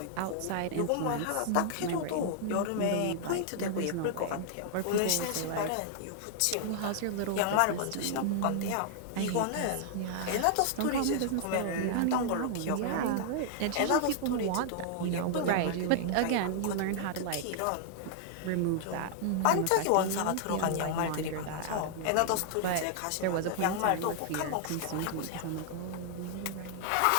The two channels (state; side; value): different; both; correlation -0.01